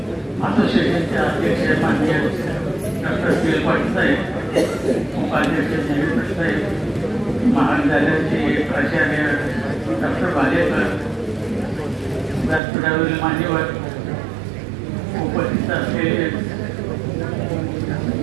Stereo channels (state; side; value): drops out; left; at 12.6 s